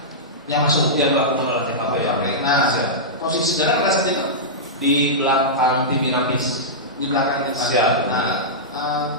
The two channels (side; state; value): both; normal; correlation -0.13